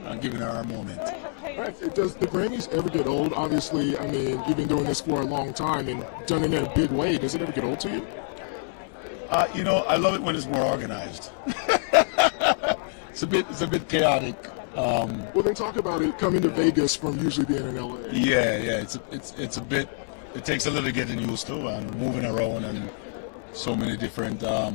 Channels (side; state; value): right; silent; 61 dB below the other